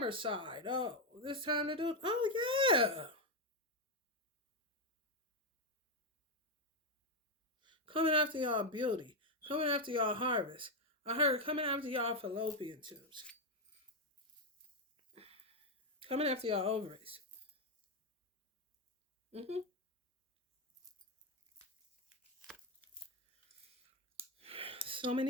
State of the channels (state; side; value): normal; both; correlation 0.05